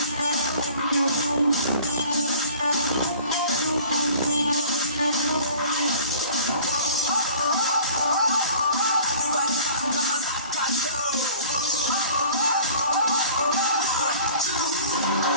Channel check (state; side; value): inverted; both; correlation -0.46